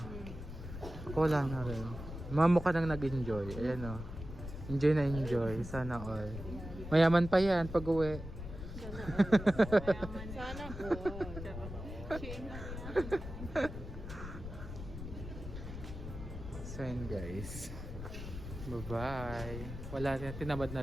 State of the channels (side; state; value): left; noise; rumble, 9 dB below the sound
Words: Ako wala na rin. Mga mukha nang nag-enjoy. Ayan o. Enjoy na enjoy. Sana all. Mayaman pa yan pag uwi. Sana all. So yun guys. Bye-bye. Wala na. Tinamad